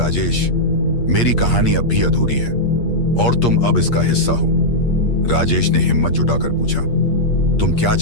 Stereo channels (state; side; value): late; right; 8.5 ms